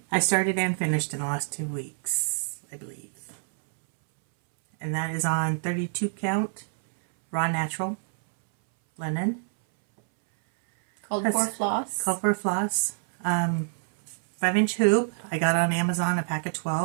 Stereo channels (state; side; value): silent; left; 60 dB below the other